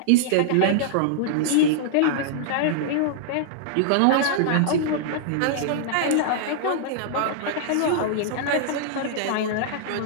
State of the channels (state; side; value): different; both; correlation -0.01